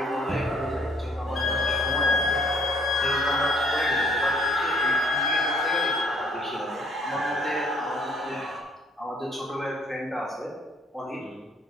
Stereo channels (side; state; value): both; normal; correlation 0.62